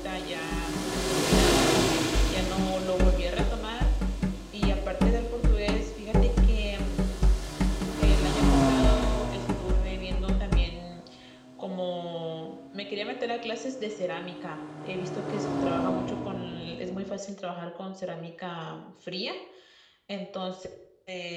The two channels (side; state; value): both; identical; correlation 1.00